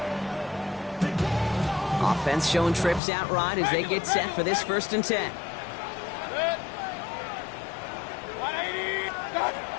Offense showing trips out right as they get set for this first and 10.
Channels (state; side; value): drops out; right; at 3.0 s